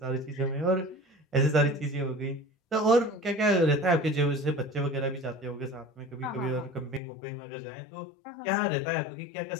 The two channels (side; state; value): right; drops out; at 7.0 s